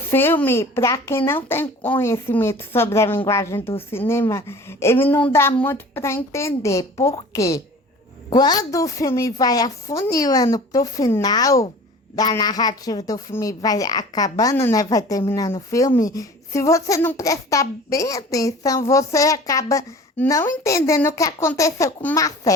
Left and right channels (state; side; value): normal; both; correlation 0.43